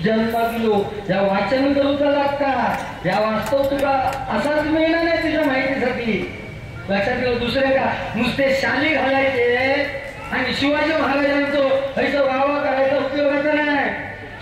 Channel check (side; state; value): both; identical; correlation 1.00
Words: जन्मालो. या वाचन करूचा लागता, या वास्तव तुला असाच मिळणार नाही तुझ्या माहितीसाठी. लक्षात ठेव. दुसरे का नुसते शाली घालायचे आणि शिवाजी महाराजांचं ह्याचा वावा करायचा उपयोगाचा नाही.